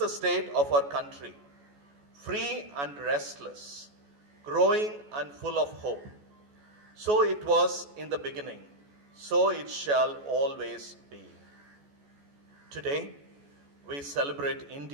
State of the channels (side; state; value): left; late; 14 ms